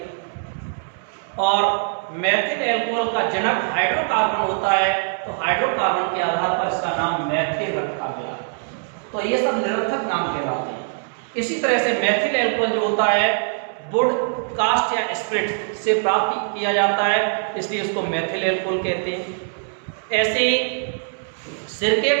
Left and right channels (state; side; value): silent; left; 64 dB below the other